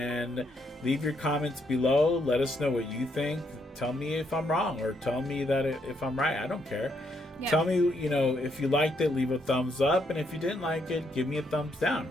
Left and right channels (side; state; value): both; normal; correlation 0.75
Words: leave your comments below. Let us know what you think. Tell me if I'm wrong, or tell me that if I'm right. I don't care. Yeah. Tell me, you know, if you liked it, leave a thumbs up, and if you didn't like it, give me a thumbs down.